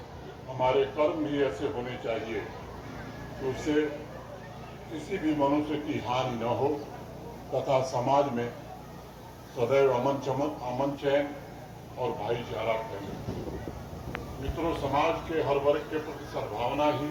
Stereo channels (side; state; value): both; identical; correlation 1.00